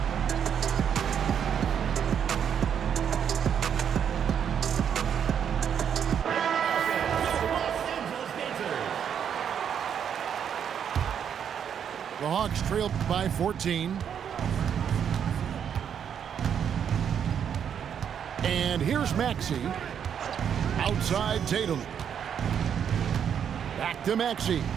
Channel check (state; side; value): quieter; left; 8.3 dB